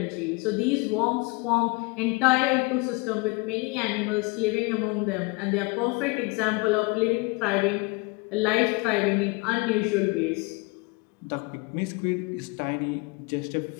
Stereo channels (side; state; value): right; quieter; 27.5 dB